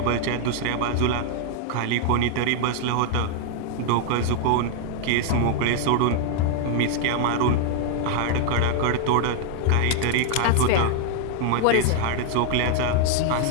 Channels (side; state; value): both; different; correlation 0.00